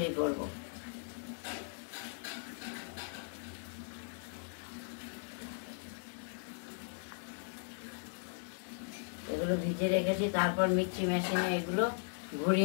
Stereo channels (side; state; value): right; silent; digital silence